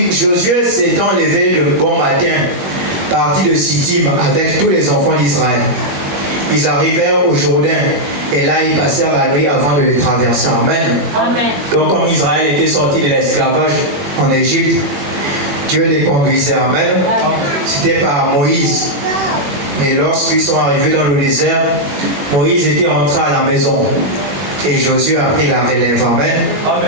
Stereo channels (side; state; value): left; late; 21 ms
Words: Josué s'étant levé de bon matin, partit de Sittim avec tous les enfants d'Israël. Ils arrivèrent au Jourdain et là ils passèrent la nuit avant de le traverser. Amen. Amen. Donc comme Israël était sorti de l'esclavage en Égypte, Dieu les conduisait. Amen. C'était par Moïse. Et lorsqu'ils sont arrivés dans le désert, Moïse était rentré à la maison. Et Josué a pris la relève. Amen.